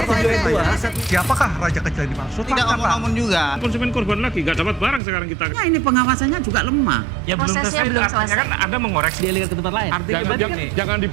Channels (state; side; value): drops out; left; at 5.0 s